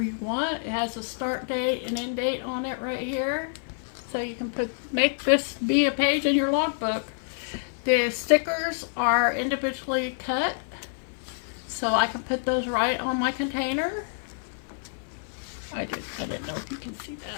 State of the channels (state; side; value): silent; right; 60 dB below the other